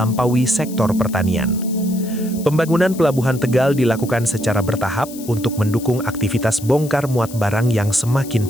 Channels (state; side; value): noise; left; hiss, 16 dB below the sound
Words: sektor pertanian. Pembangunan Pelabuhan Tegal dilakukan secara bertahap untuk mendukung aktivitas bongkar muat barang yang semakin